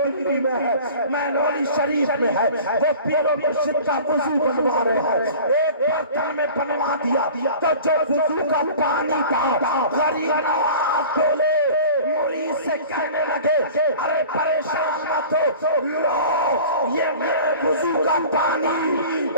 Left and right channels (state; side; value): inverted; both; correlation -0.41